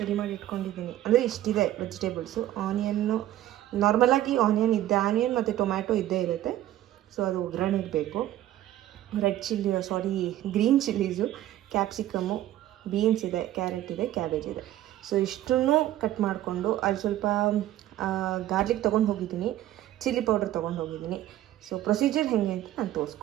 ಮಾಡಿ ಇಟ್ಕೊಂಡಿದ್ದೀನಿ. ಅಂದರೆ ಇಷ್ಟಿದೆ ವೆಜಿಟೇಬಲ್ಸು. ಆನಿಯನ್ನು ನಾರ್ಮಲಾಗಿ ಆನಿಯನ್ ಮತ್ತು ಟೊಮ್ಯಾಟೊ ಇದ್ದೇ ಇರುತ್ತೆ. ಸೊ ಅದು ಒಗ್ಗರಣೆಗೆ ಬೇಕು. ಗ್ರೀನ್ ಚಿಲ್ಲೀಸು, ಕ್ಯಾಪ್ಸಿಕಮ್ಮು, ಬೀನ್ಸ್ ಇದೆ, ಕ್ಯಾರೆಟ್ ಇದೆ, ಕ್ಯಾಬೇಜ್ ಇದೆ. ಸೊ ಇಷ್ಟನ್ನು ಕಟ್ ಮಾಡಿಕೊಂಡು ಅಲ್ಲಿ ಸ್ವಲ್ಪ ಗಾರ್ಲಿಕ್ ತೊಗೊಂಡು ಹೋಗಿದ್ದೀನಿ, ಚಿಲ್ಲಿ ಪೌಡರ್ ತೊಗೊಂಡು ಹೋಗಿದ್ದೀನಿ. ಸೊ ಪ್ರೊಸೀಜರ್ ಹೇಗೆ ಅಂತ ನಾನು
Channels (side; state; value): left; quieter; 13.5 dB